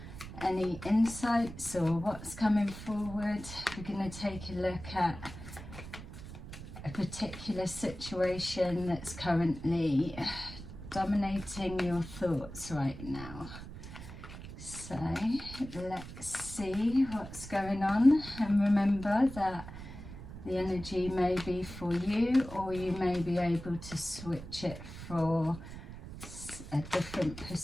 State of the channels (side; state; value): right; noise; rumble, 12 dB below the sound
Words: any insights or what's coming forward. We're going to take a look at a particular situation that's currently dominating your thoughts right now. So let's see what's going on, and remember that the energy may be for you, or you may be able to switch it for a different